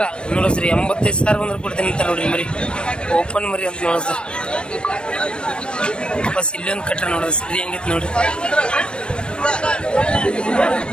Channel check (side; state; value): right; late; 0.056 ms